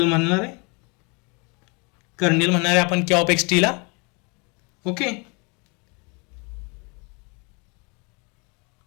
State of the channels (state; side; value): quieter; right; 31.5 dB